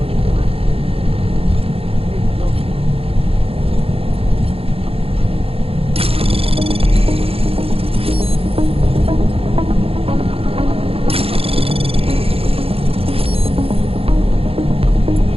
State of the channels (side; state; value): left; late; 0.28 ms